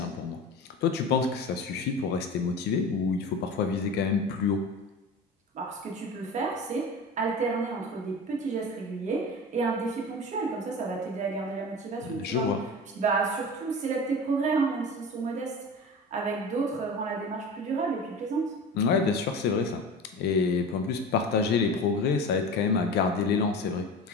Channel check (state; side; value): normal; both; correlation 0.32